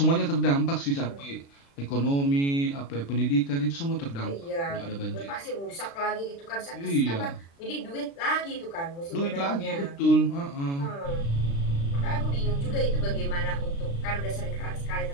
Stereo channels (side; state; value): right; late; 36 ms